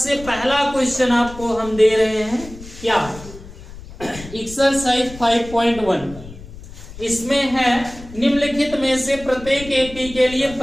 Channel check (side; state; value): left; noise; rumble, 15 dB below the sound